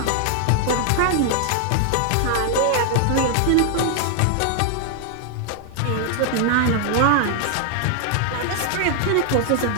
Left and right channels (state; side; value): different; both; correlation 0.00